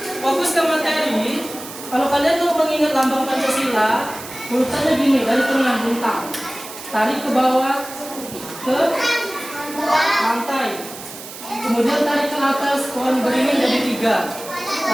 fokus ke materi. Kalau kalian mau mengingat lambang Pancasila, urutannya gini, dari tengah bintang, tarik ke bawah ke lantai, kemudian tarik ke atas, pohon beringin jadi 3,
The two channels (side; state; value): right; noise; hiss, 13 dB below the sound